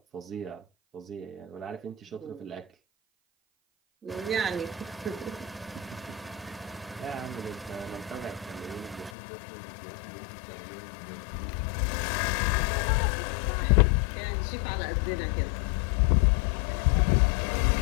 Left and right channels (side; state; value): right; drops out; at 9.1 s